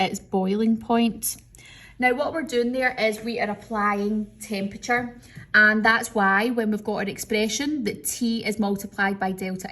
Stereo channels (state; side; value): identical; both; correlation 1.00